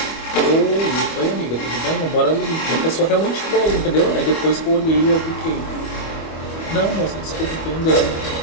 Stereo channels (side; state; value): right; late; 25 ms